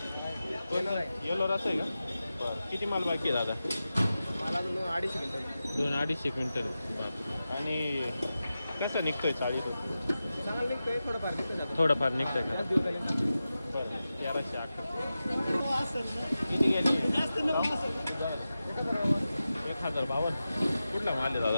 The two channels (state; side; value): inverted; both; correlation -0.93